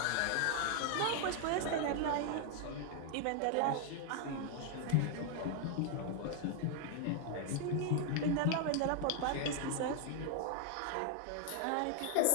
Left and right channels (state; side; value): different; both; correlation 0.00